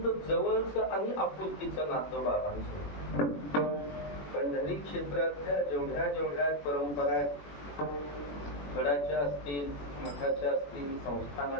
जवळचं आणि आपुलकीचं नातं बाबांचं. पंढरी क्षेत्रातल्या जेवढ्या परंपरा आहेत गडाच्या असतील, मठाच्या असतील,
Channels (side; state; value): right; late; 21 ms